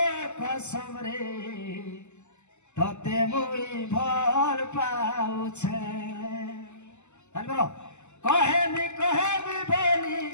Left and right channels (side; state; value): right; late; 0.83 ms